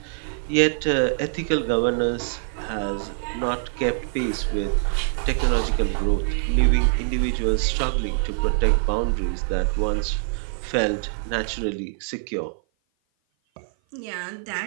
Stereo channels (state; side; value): silent; left; 55 dB below the other